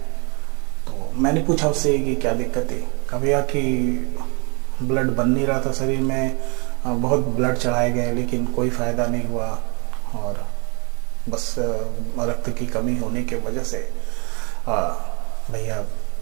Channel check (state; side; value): quieter; left; 31.8 dB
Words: तो मैंने पूछा उससे कि क्या दिक्कत है। कहा भैया कि ब्लड बन नहीं रहा था शरीर में, बहुत ब्लड चढ़ाए गए लेकिन कोई फ़ायदा नहीं हुआ और बस रक्त की कमी होने की वजह से भैया